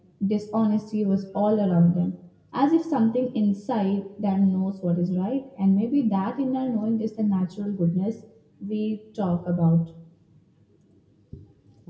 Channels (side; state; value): both; identical; correlation 1.00